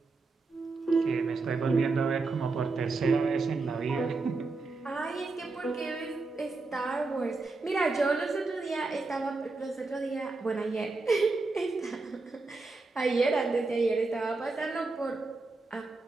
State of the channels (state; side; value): quieter; left; 3.7 dB